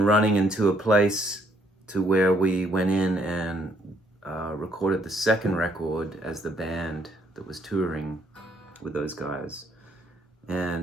running into a place to where we went in and recorded the second record as the band that was touring with those guys.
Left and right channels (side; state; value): both; normal; correlation 0.69